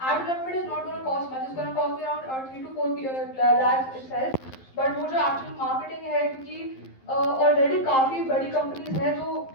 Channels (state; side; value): late; right; 11 ms